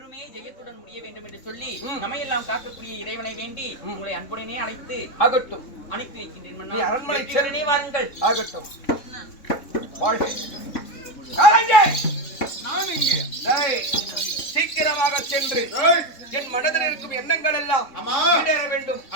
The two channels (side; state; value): right; late; 3.6 ms